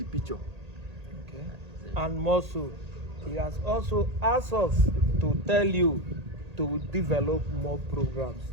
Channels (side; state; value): left; late; 1.8 ms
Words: picture. Okay. And more so, he has also asked us to tell you to develop more programs